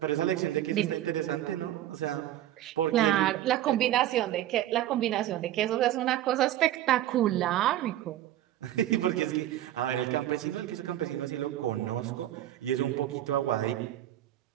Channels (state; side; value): quieter; left; 13.1 dB